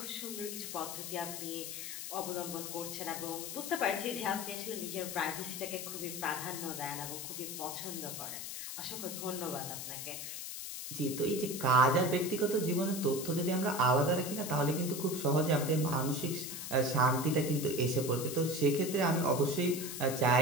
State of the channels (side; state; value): left; noise; hiss, 7 dB below the sound